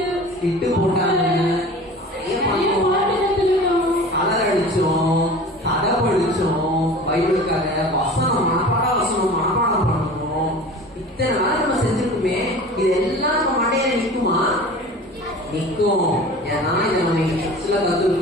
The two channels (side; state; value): both; normal; correlation 0.39